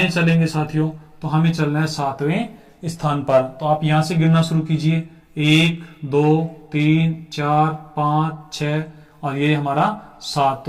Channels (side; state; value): both; identical; correlation 1.00